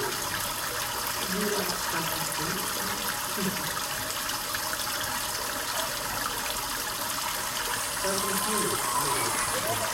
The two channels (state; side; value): identical; both; correlation 1.00